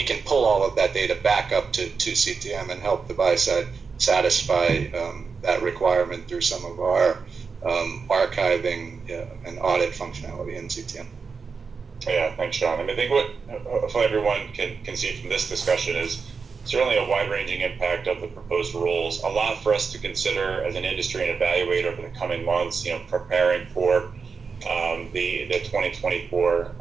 can pull all of that data back up to CTM and help the buy side satisfy that requirement through some of our archiving and audit functionality in CTM. Yeah, thanks, Sean. I think what hopefully everyone can see from this discussion is certainly a wide-ranging impact of the proposed rules. A lot for us to consider as an industry and evaluate over the coming months. Preparing for the 2024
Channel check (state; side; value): quieter; left; 5.2 dB